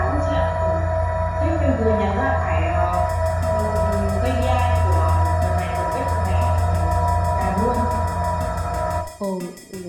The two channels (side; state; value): both; identical; correlation 1.00